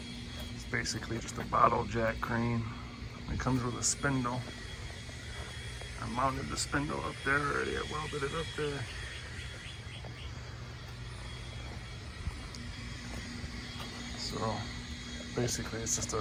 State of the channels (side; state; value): both; identical; correlation 1.00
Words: It's basically just a bottle jack crane. It comes with a spindle. I mounted the spindle up there already. I welded it up there. So basically it's just a